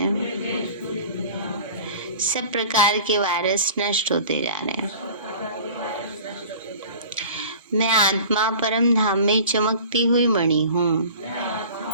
सब प्रकार के वायरस नष्ट होते जा रहे हैं। मैं आत्मा परम धाम में चमकती हुई मणि हूँ।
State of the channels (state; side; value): inverted; both; correlation -0.42